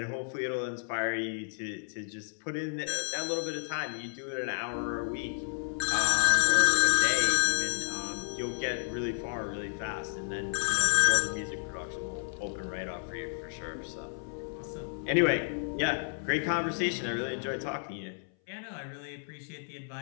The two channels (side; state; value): right; silent; 57 dB below the other